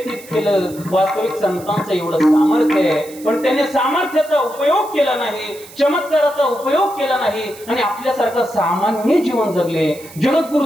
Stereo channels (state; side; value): noise; right; hiss, 19 dB below the sound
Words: केलं. वास्तविक संतांचं एवढं सामर्थ्य आहे, पण त्याने सामर्थ्याचा उपयोग केला नाही, चमत्काराचा उपयोग केला नाही आणि आपल्यासारखं सामान्य जीवन जगले. जगद्गुरु